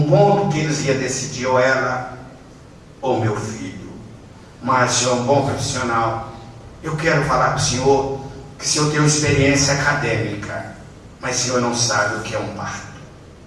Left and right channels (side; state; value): both; identical; correlation 1.00